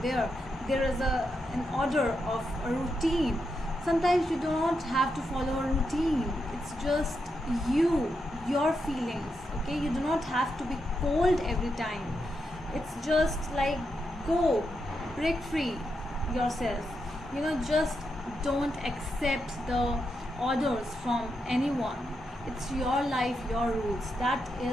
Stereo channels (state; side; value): normal; both; correlation 0.84